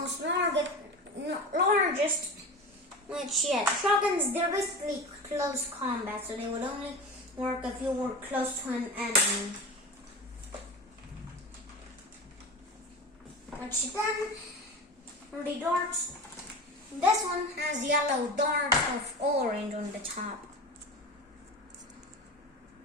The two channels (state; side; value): normal; both; correlation 0.29